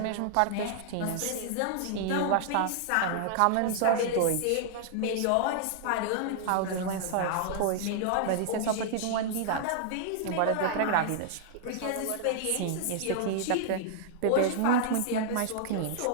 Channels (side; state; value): both; different; correlation -0.01